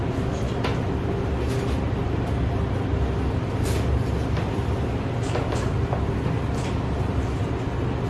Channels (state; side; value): identical; both; correlation 1.00